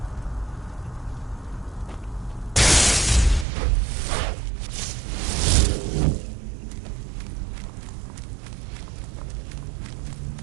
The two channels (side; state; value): left; drops out; at 3.5 s